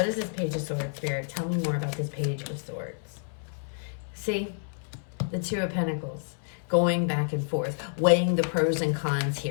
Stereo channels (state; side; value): silent; right; 59 dB below the other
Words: is this Page of Swords, Spirit? Tell me more about this Page of Swords. See, the Two of Pentacles, going back and forth, weighing the pros and cons